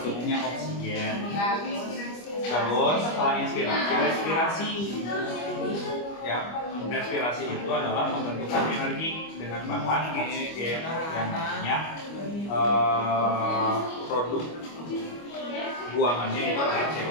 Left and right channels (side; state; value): right; late; 25 ms